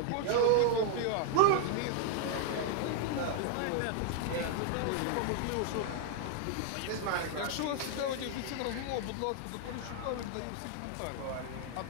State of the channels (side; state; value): both; different; correlation -0.01